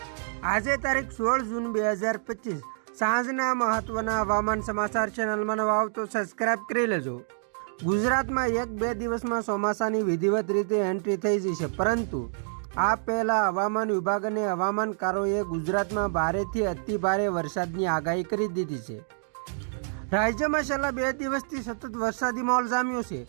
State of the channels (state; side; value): silent; left; digital silence